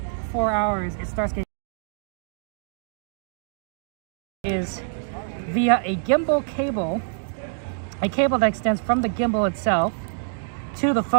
hours, it starts getting is via a gimbal cable, a cable that extends from the gimbal itself to the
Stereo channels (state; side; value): silent; left; digital silence